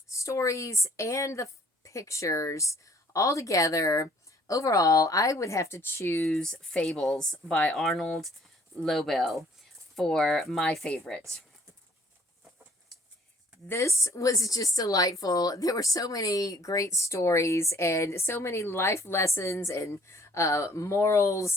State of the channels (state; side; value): normal; both; correlation 0.58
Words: stories and the pictures all together, overall, I would have to choose Fables by Arnold Lobel for my favorite. This was just delightful. There were so many great stories and so many life lessons and